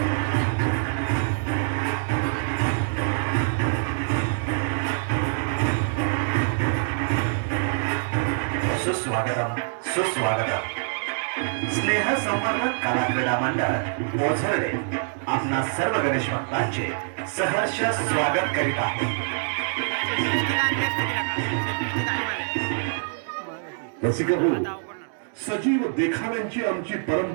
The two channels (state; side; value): silent; left; digital silence